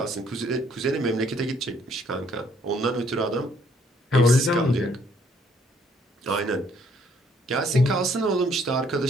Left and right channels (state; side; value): normal; both; correlation 0.65